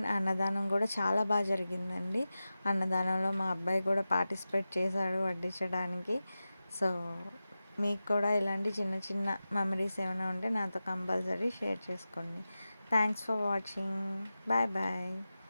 అన్నదానం కూడా చాలా బాగా జరిగిందండి. అన్నదానంలో మా అబ్బాయి కూడా పార్టిసిపేట్ చేశాడు వడ్డించడానికి. సో మీకు కూడా ఇలాంటి చిన్న చిన్న మెమరీస్ ఏమైనా ఉంటే నాతో కంపల్సరీ షేర్ చేసుకోండి. Thanks for watching. Bye bye.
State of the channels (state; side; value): inverted; both; correlation -0.94